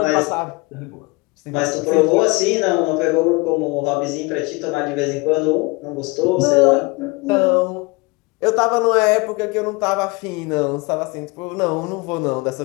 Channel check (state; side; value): quieter; right; 25.7 dB